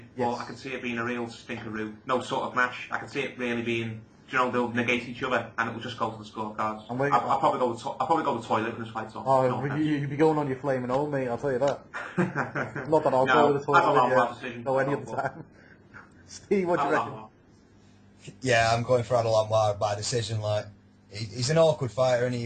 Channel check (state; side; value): identical; both; correlation 1.00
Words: Yes. But I can see it being a real stinkeroo. No sort of match. I can see it really being. They'll negate each other, and it will just go to the scorecards. I'll probably go with toilet when this fight's on. Oh, you'd be going on your flaming old, mate. I'll tell you that. Not that I'll go with the toilet. I don't know decision. No, any other time. Steve, what do you reckon? Yeah, I'm going for Adel Anwar by decision. Like, he's an awkward fighter, and